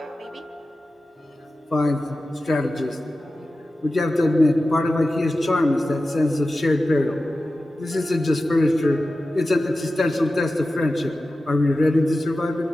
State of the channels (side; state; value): both; normal; correlation 0.94